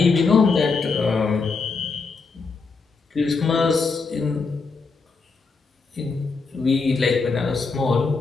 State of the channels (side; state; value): right; quieter; 4.5 dB